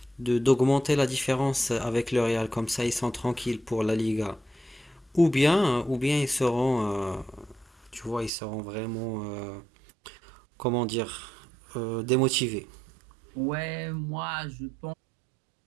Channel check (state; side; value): drops out; left; at 8.3 s